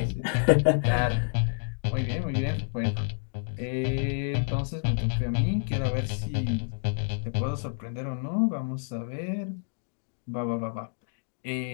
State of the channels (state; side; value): silent; right; digital silence